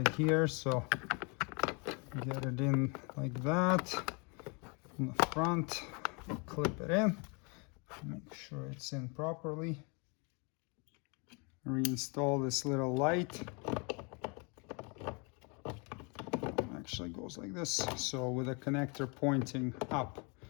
here, so get it in like that. In the front, clip it in. Make sure it's in properly. Reinstall this little light. Actually goes like this, so with a connector pointing up.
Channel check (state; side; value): quieter; right; 32.7 dB